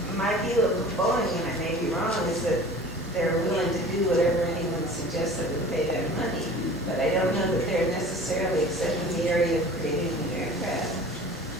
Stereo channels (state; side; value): normal; both; correlation 0.42